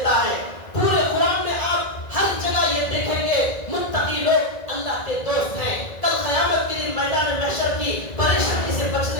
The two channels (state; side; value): late; right; 1.9 ms